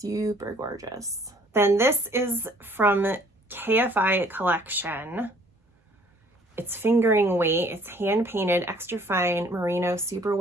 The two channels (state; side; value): normal; both; correlation 0.58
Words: gorgeous. Then this is from KFI Collection. It's fingering weight. It's hand painted, extra fine merino